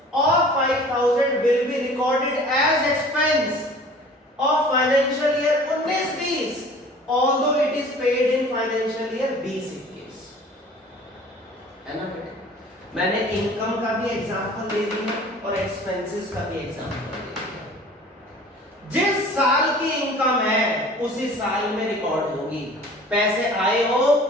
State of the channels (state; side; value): normal; both; correlation 0.46